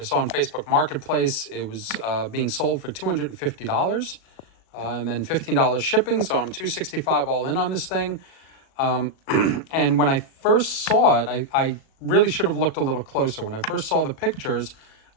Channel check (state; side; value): late; right; 37 ms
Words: saw on Facebook Marketplace. It was being sold for $250 and then $15 shipping. So I'm $265 all in on this thing. And when I first saw it, I really should have looked a little closer. When I first saw the pictures,